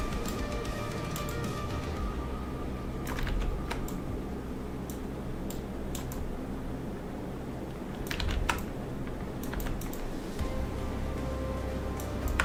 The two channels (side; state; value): both; identical; correlation 1.00